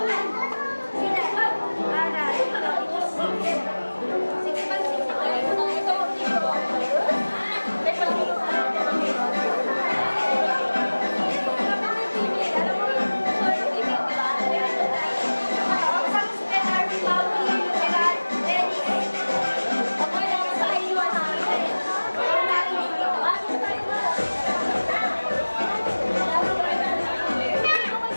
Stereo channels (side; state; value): both; inverted; correlation -1.00